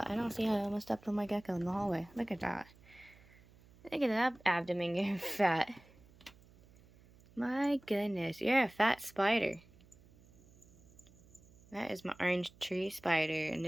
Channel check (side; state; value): right; noise; hum, 26 dB below the sound